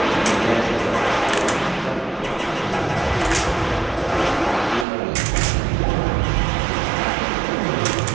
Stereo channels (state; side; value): drops out; left; at 4.9 s